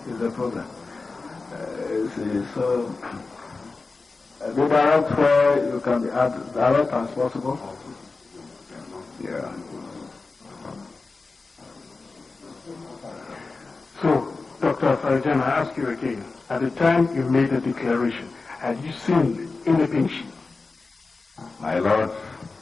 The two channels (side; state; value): right; quieter; 3.9 dB